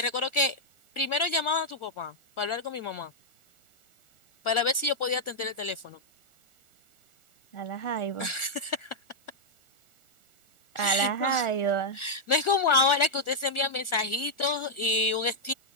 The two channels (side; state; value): right; late; 1.4 ms